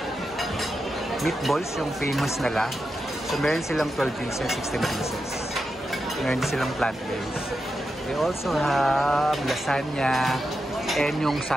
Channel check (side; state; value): both; normal; correlation 0.88